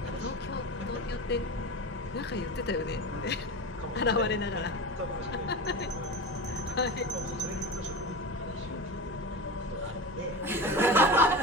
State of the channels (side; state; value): both; normal; correlation 0.27